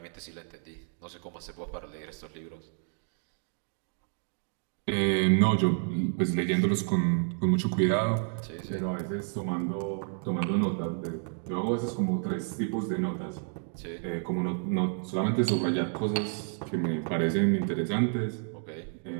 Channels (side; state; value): left; silent; 58 dB below the other